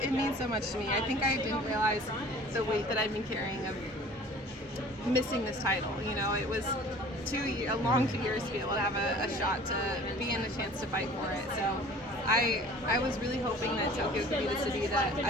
means so much to me. I think I didn't realize the weight that I've been carrying of missing this title. You know, it was a long 2 years to be able to have a shot to be in a chance to fight for it. So I was really hoping that Tokyo could be the city that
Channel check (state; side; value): normal; both; correlation 0.47